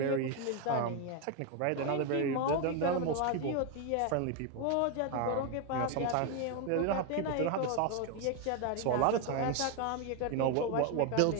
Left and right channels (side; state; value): both; different; correlation 0.01